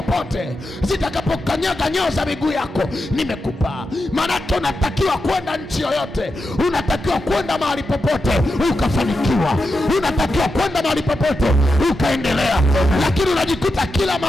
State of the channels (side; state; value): both; normal; correlation 0.88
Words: zitakapokanyaga nyayo za miguu yako nimekupa. Maanake unatakiwa kwenda nchi yoyote, unatakiwa kwenda mahali popote ukafanikiwa, unatakiwa kwenda mahali popote ukaendelea, lakini unajikuta kila